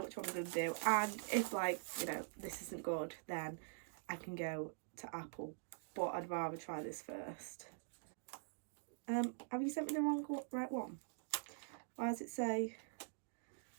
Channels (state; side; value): silent; left; digital silence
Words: which one I'm going to do, and if like, you know, this isn't good, then I can go to Apple, but I'd rather try this first. Have you sent me the right one? Why does it say?